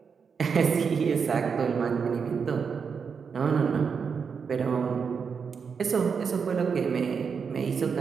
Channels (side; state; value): left; quieter; 6.0 dB